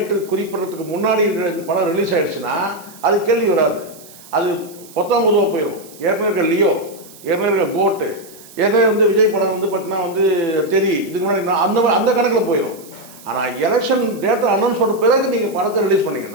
குறிப்பிட்றதுக்கு முன்னாடி இந்த படம் ரிலீஸ் ஆகிடுச்சுன்னா அது கேள்வி வராது, அது பொதுவாக போயிடும். ஏற்கனவே இருக்க லியோ, ஏற்கனவே இருக்க கோட்டு, ஏற்கனவே வந்து விஜய் படம் வந்து பார்த்தீங்கன்னா வந்து இதுக்கு முன்னாடி அந்த கணக்கில் போயிடும். ஆனால் எலெக்ஷன் டேட்டை அனௌன்ஸ் பண்ண பிறகு நீங்கள் படத்தை ரிலீஸ்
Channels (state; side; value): noise; right; hiss, 21 dB below the sound